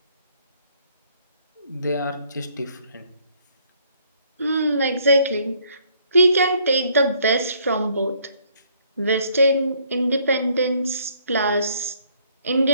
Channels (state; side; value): inverted; both; correlation -0.65